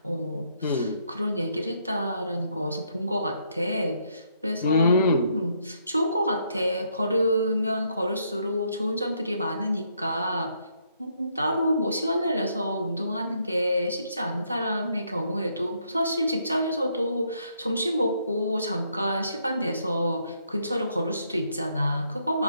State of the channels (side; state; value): both; inverted; correlation -0.73